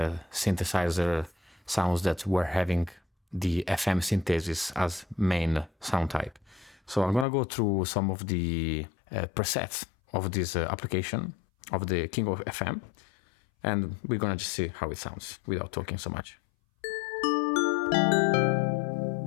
synthesizer sounds that were having the FM synthesis as main sound type. So I'm gonna go through some of the presets of this application of the King of FM, and we're gonna just see how it sounds without talking so much.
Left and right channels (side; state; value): right; drops out; at 7.2 s